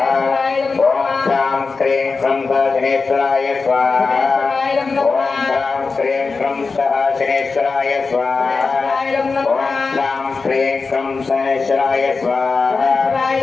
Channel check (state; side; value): quieter; right; 4.4 dB